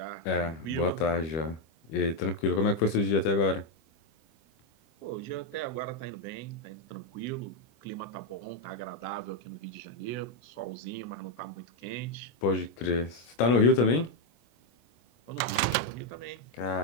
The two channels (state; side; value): late; right; 24 ms